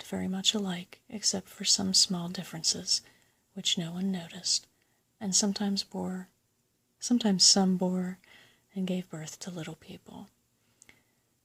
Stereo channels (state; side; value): identical; both; correlation 1.00